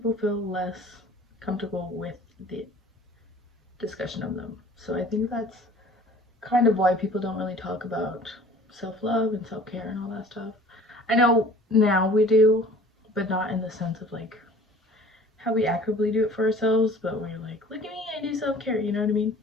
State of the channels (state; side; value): normal; both; correlation 0.48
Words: feel less comfortable with the discussion of them. So I think that's kind of why people don't really talk about self-love and self-care and all that stuff. I know now we do, but not in the sense of like how we actively do it for ourselves, but we're like, look at me, I do self-care, you know what I mean?